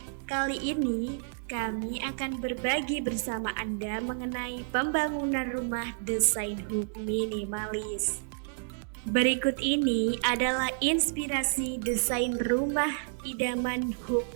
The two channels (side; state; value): left; silent; 58 dB below the other